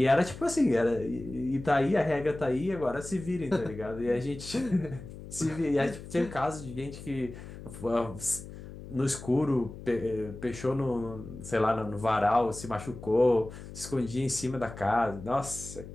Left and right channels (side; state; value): left; noise; hum, 13 dB below the sound